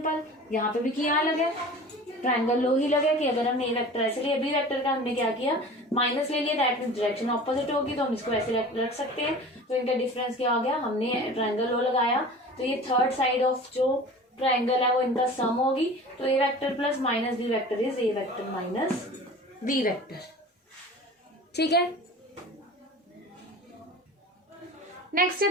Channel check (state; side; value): normal; both; correlation 0.39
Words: यहाँ पे भी क्या लगे, ट्रायंगल लो ही लगे कि अगर हमने ए वेक्टर ऐसे लिया, बी वेक्टर का हमने क्या किया, माइनस ले लिया, दैट मींस डायरेक्शन ऑपोजिट होगी, तो हम इसको ऐसे रख सकते हैं। तो इनका डिफरेंस क्या हो गया, हमने ट्रायंगल लो लगाया, तो ये थर्ड साइड ऑफ जो ट्रायंगल है वो इनका सम होगी। तो A vector plus minus B vector is A vector minus B vector. ठीक है, नेक्स्ट है